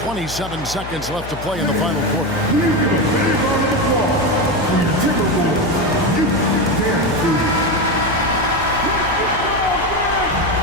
27 seconds left to play in the final quarter.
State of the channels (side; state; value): left; noise; hum, 11 dB below the sound